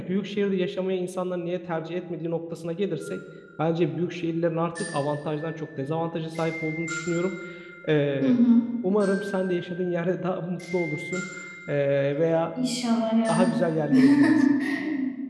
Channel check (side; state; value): both; identical; correlation 1.00